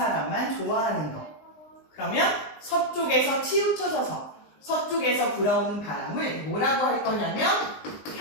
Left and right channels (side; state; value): right; late; 19 ms